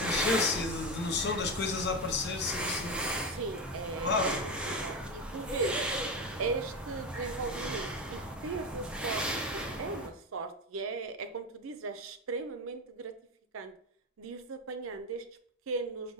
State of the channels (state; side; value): normal; both; correlation 0.18